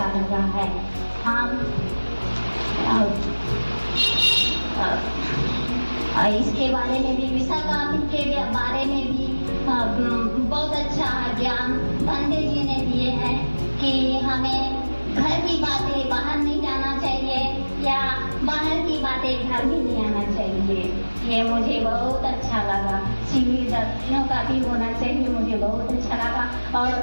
लगा है। हम इसके बारे में भी, विशाखा के बारे में भी बहुत अच्छा ज्ञान पंडित जी ने दिए हैं कि हमें घर की बातें बाहर नहीं जाना चाहिए या बाहर की बातें घर में नहीं आना चाहिए। ये मुझे बहुत अच्छा लगा। शिविर 10 दिनों का भी होना चाहिए, मुझे बहुत अच्छा लगा। और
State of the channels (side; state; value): both; inverted; correlation -1.00